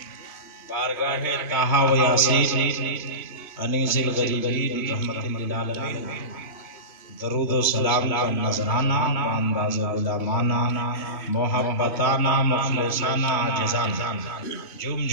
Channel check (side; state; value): right; late; 3.2 ms